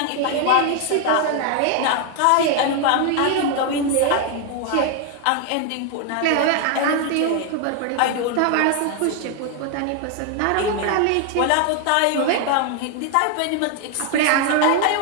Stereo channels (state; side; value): different; both; correlation 0.00